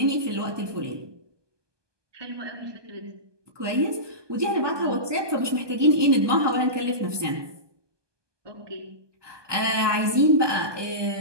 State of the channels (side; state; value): left; late; 1.2 ms